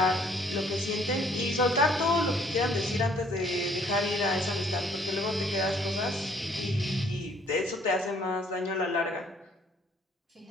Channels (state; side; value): normal; both; correlation 0.62